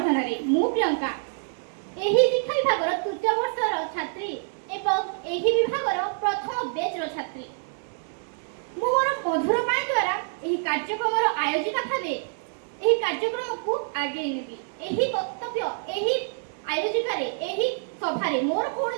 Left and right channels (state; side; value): silent; left; digital silence